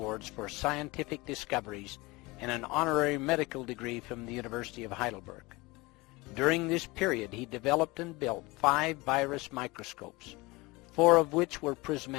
for scientific discoveries and an honorary medical degree from the University of Heidelberg. During this period, he developed and built 5 virus microscopes, 4 of which were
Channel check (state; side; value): quieter; right; 23.2 dB